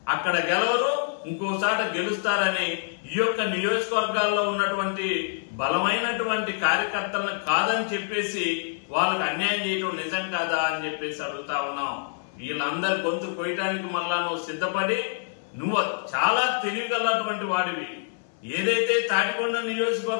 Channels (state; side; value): silent; right; 61 dB below the other